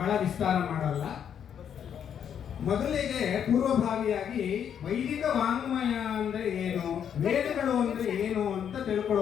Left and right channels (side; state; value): right; quieter; 8.6 dB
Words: ವಿಸ್ತಾರ ಮಾಡಲ್ಲ. ಮೊದಲಿಗೆ ಪೂರ್ವಭಾವಿಯಾಗಿ ವೈದಿಕ ವಾಂಗ್ಮಯ ಅಂದ್ರೆ ಏನು, ವೇದಗಳು ಅಂದ್ರೆ ಏನು ಅಂತ